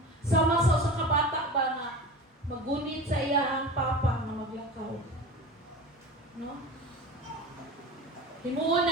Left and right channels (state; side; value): normal; both; correlation 0.33